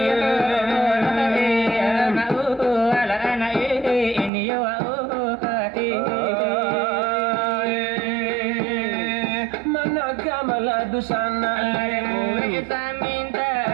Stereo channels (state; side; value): drops out; left; at 4.3 s